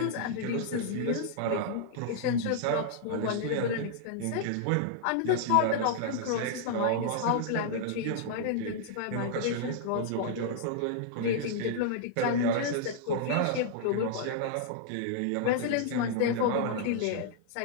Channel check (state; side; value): different; both; correlation -0.01